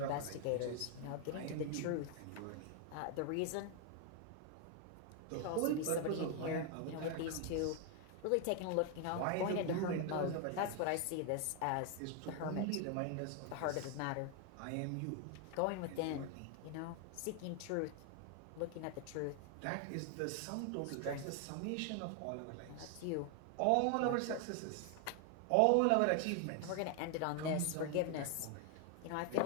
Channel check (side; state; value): both; different; correlation 0.01